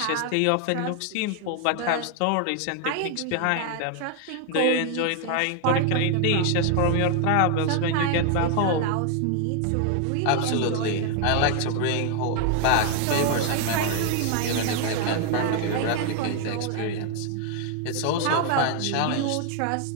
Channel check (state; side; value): different; both; correlation 0.00